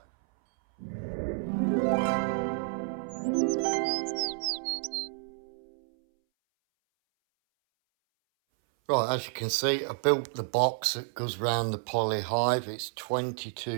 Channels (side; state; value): left; silent; 58 dB below the other